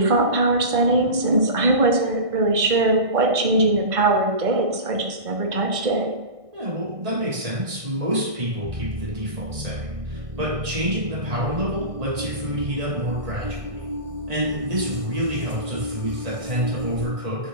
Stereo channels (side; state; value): left; late; 1.6 ms